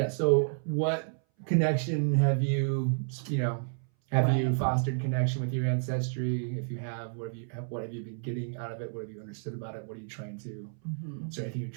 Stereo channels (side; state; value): left; silent; 57 dB below the other